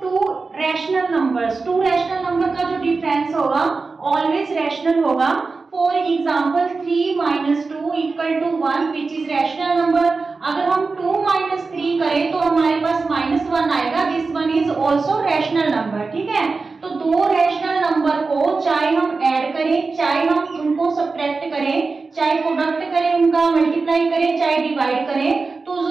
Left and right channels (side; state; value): left; quieter; 4.1 dB